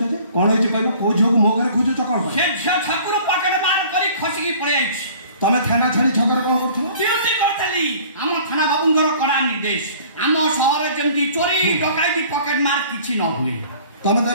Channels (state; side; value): inverted; both; correlation -0.50